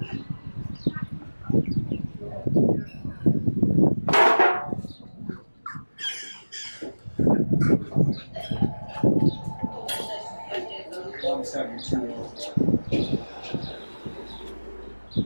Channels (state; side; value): inverted; both; correlation -1.00